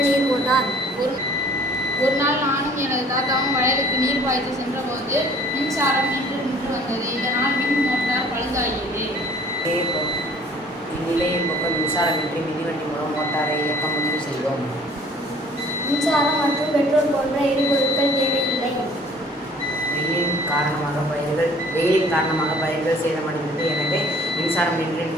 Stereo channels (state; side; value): normal; both; correlation 0.53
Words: நீர் மோட்டார். ஒரு நாள் நானும் எனது தாத்தாவும் வயலுக்கு நீர் பாய்ச்சி சென்றபோது மின்சாரம் நின்று வந்தது. இதனால் மின் மோட்டார் பழுதாகியது. இந்நிலையை போக்க மின்சாரமின்றி மிதிவண்டி மூலம் மோட்டாரை இயக்க முடிவு செய்தோம். மின்சாரம் மற்றும் பெட்ரோல் போன்ற எரிபொருட்கள் தேவையில்லை. வெயிலின் காரணமாக பயிர்கள் சேதமடைந்தது. எனவே மின்சாரம்